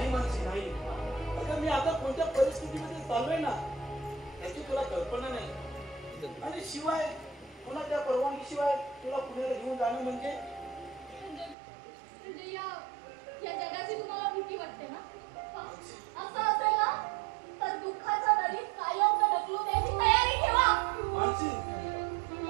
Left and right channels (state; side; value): drops out; left; at 11.6 s